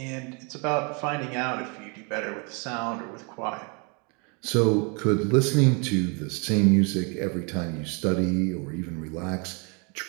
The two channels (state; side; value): quieter; left; 33.5 dB